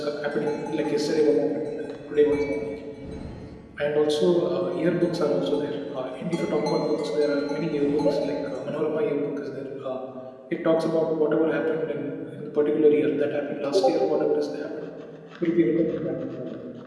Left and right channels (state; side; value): identical; both; correlation 1.00